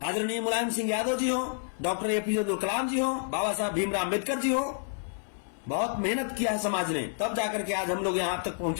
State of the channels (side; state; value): right; silent; 58 dB below the other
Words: आदरणीय मुलायम सिंह यादव जी हो, डॉक्टर एपीजे अब्दुल कलाम जी हो, बाबा साहब भीमराव अम्बेडकर जी हो। बहुत मेहनत किया है समाज ने, तब जाकर के आज हम लोग यहां तक